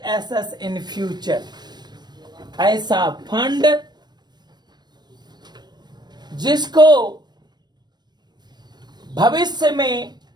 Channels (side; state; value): left; late; 0.21 ms